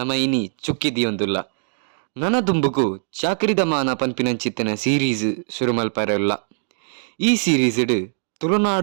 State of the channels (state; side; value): silent; left; 64 dB below the other